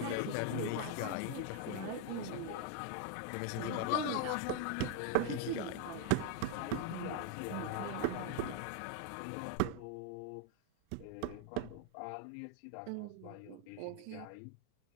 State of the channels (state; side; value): different; both; correlation 0.00